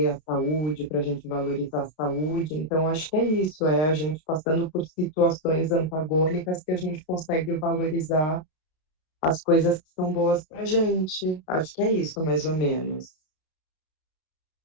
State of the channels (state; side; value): late; right; 33 ms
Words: a saúde, para a gente valorizar a saúde. Então, acho que é isso, é a gente passando por situações antagônicas que a gente consegue valorizar as coisas que são boas para a gente. Acho que é isso, mais ou menos.